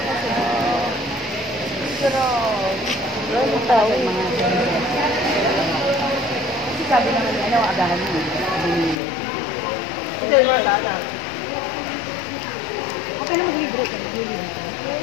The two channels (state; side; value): drops out; right; at 9.0 s